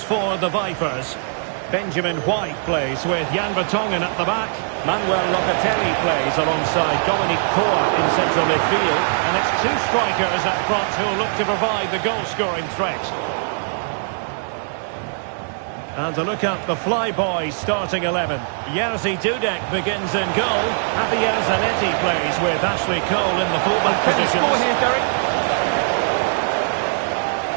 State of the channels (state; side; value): silent; left; 65 dB below the other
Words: the Vipers. Benjamin White plays with Jan Vertonghen at the back. Manuel Locatelli plays alongside Dominic Koa in central midfield. And it's two strikers up front who will look to provide the goal-scoring threat. And to look at the Flyboys starting 11. Jerzy Dudek begins in goal. Javier Zanetti plays with Ashley Cole in the fullback positions. Score here, Derek.